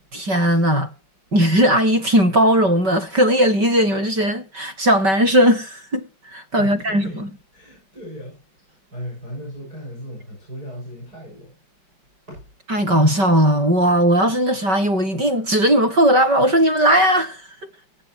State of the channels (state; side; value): late; left; 5.2 ms